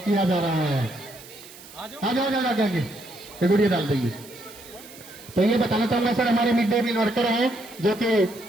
जा रहा है। आ जाओ गुड़िया डाल देंगे। तो ये बताना चाहूंगा सर, हमारे मिड डे मील वर्कर हैं जो कि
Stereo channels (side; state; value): right; noise; hiss, 19 dB below the sound